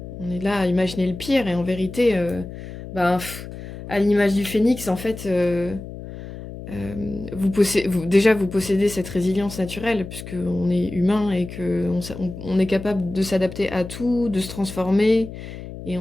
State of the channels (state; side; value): noise; left; hum, 12 dB below the sound